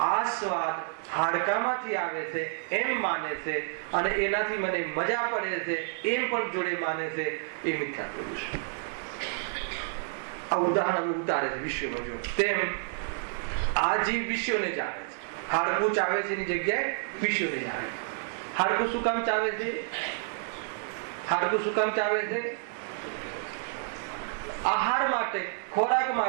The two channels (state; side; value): silent; left; 58 dB below the other